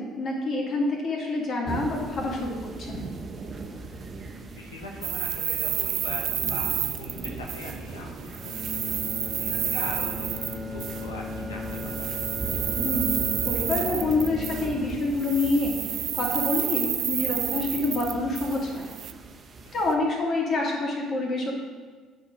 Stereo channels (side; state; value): both; normal; correlation 0.60